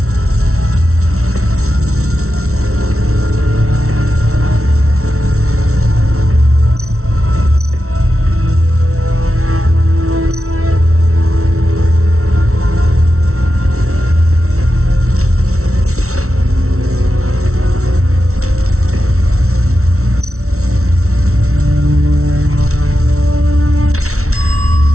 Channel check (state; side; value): late; left; 0.63 ms